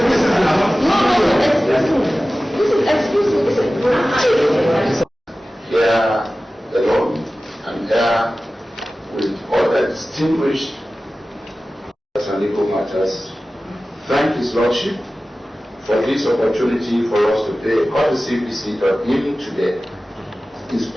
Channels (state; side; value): normal; both; correlation 0.96